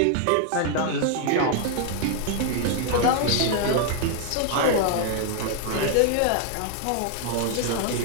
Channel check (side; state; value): both; different; correlation 0.00